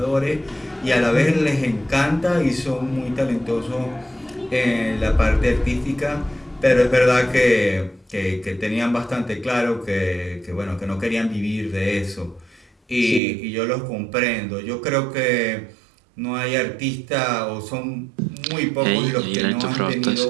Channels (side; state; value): left; drops out; at 13.2 s